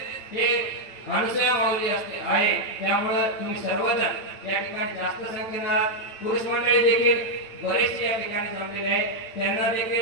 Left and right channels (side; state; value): right; late; 8.9 ms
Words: हे अनुसया माऊली असते आहे। त्यामुळे तुम्ही सर्वजण या ठिकाणी जास्त संख्येने, पुरुष मंडळी देखील बरेचसे या ठिकाणी जमलेले आहे, त्यांना